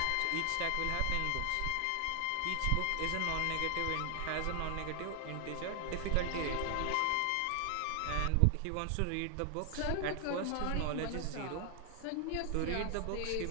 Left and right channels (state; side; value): different; both; correlation 0.00